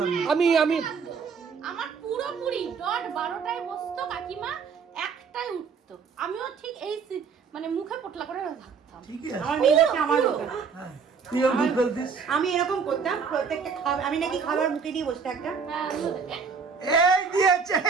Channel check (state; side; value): quieter; left; 5.8 dB